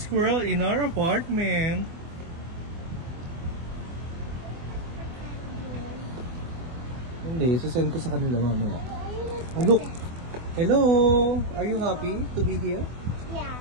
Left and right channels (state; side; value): late; left; 24 ms